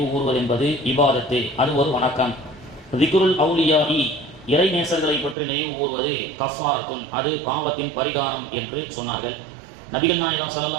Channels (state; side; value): drops out; left; at 5.4 s